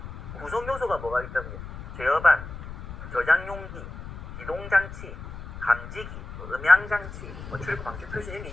구성 요소가 뭐가 있다고요? 제어반, 저장용기, 기동장치, 감지기, 음향장치, 출구 방지 표시 이런 게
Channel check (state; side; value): noise; left; rumble, 11 dB below the sound